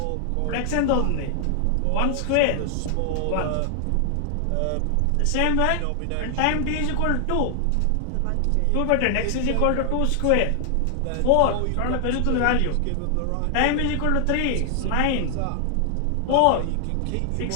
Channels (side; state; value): both; different; correlation 0.00